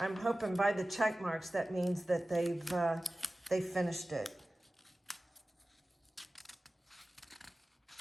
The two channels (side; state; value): both; normal; correlation 0.96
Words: I'm hoping by the check marks that means that they've finished it.